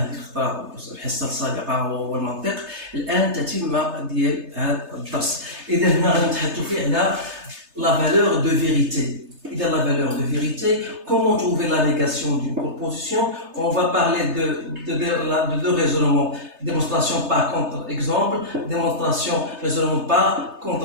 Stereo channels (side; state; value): left; late; 3.3 ms